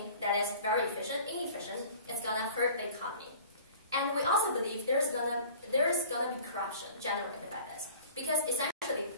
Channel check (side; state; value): both; inverted; correlation -0.44